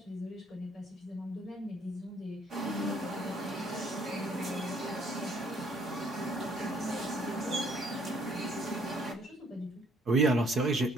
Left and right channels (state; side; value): normal; both; correlation 0.64